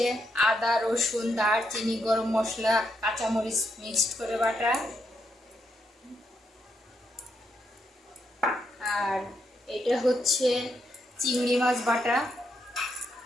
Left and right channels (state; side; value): normal; both; correlation 0.79